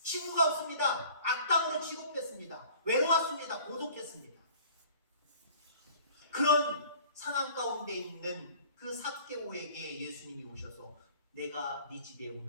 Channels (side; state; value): both; inverted; correlation -0.49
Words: 친구가 없습니다. 악당으로 취급했습니다. 외로웠습니다. 고독했습니다. 그런 상황 가운데 있는 그 삭개오에게 예수님이 오셔서 내가 네 집에